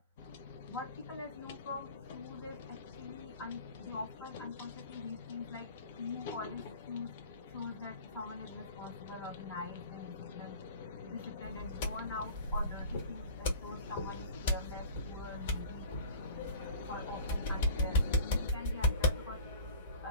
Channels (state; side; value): inverted; both; correlation -0.42